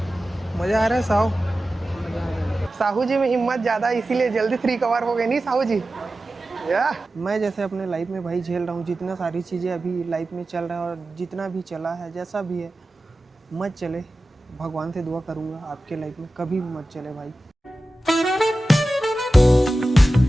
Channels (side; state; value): both; normal; correlation 0.94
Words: मज़ा आ रहा है साहू। साहू जी में हिम्मत ज़्यादा इसीलिए जल्दी 3 कवर हो गए नहीं साहू जी। या मैं जैसे अपने लाइफ में भाई झेल रहा हूँ, जितना सारी चीज़ें अभी लाइफ में चल रहा है और जितना भी चला है जैसा भी है मत चले। भगवान से दुआ करूँगा आपके लाइफ में कभी भी मत चले भाई।